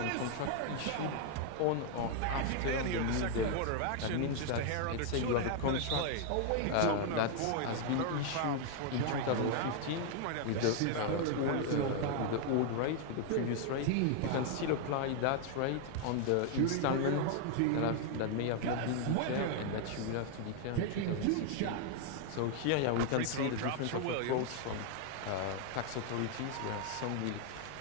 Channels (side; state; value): both; different; correlation 0.00